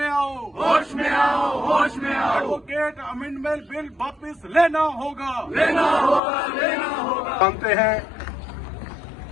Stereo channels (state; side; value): drops out; right; at 6.2 s